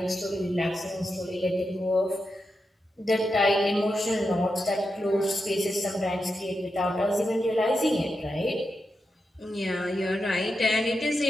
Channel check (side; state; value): both; normal; correlation 0.88